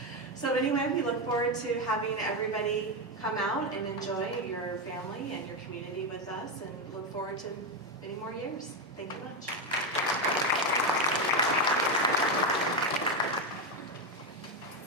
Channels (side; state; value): both; normal; correlation 0.09